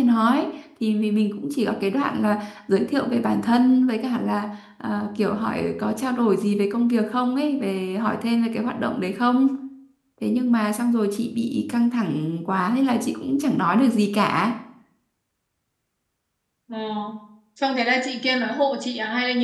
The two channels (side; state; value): both; identical; correlation 1.00